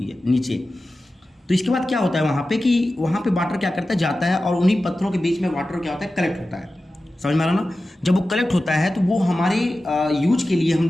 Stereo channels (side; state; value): both; normal; correlation 0.94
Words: है नीचे। तो इसके बाद क्या होता है वहाँ पे कि वहाँ पे वाटर क्या करता है, जाता है और उन्हीं पत्थरों के बीच में वाटर क्या होता है, कलेक्ट होता है। समझ में आ रहा ना। जब वो कलेक्ट होता है तो वो हमारे यूज के लिए हम